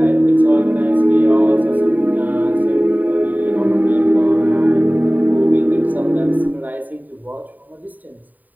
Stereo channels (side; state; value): left; late; 0.084 ms